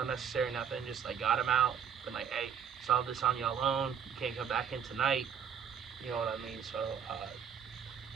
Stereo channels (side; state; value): left; quieter; 7.8 dB